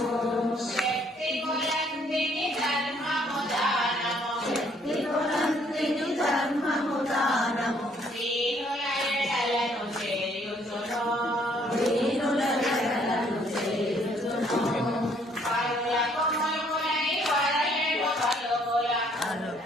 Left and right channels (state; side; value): normal; both; correlation 0.64